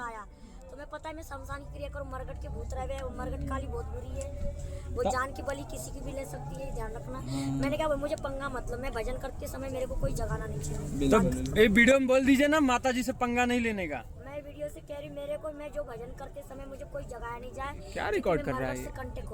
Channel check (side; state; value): both; identical; correlation 1.00